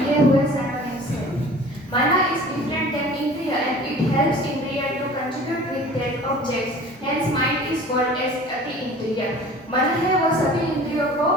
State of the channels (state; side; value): normal; both; correlation 0.44